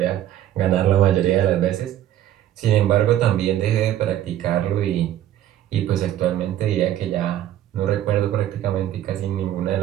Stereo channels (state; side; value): quieter; left; 12.1 dB